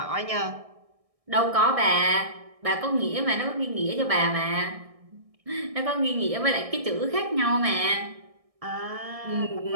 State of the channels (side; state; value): left; late; 1.6 ms